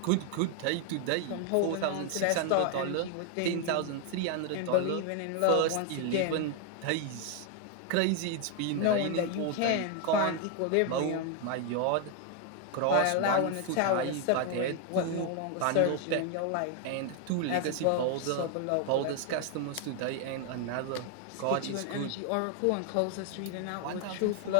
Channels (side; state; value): both; different; correlation 0.00